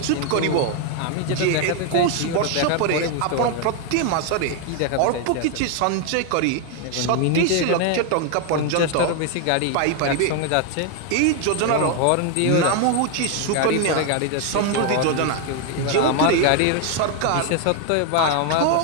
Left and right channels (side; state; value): both; different; correlation 0.01